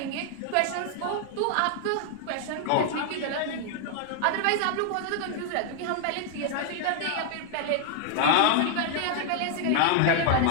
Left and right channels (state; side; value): different; both; correlation 0.00